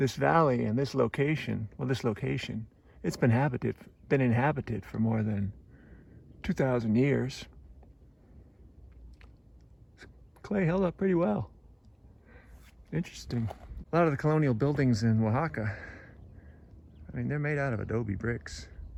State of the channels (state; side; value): identical; both; correlation 1.00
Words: valley and this location, it's been inhabited for more than 2,000 years. Clay held up pretty well. Interesting. A lot of the colonial buildings in Oaxaca, I mean, they're made out of adobe bricks.